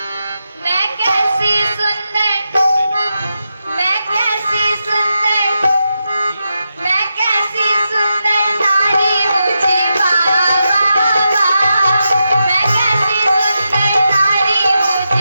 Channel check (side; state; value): both; inverted; correlation -0.87